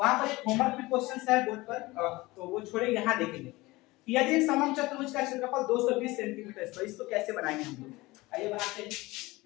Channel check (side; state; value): right; quieter; 20.9 dB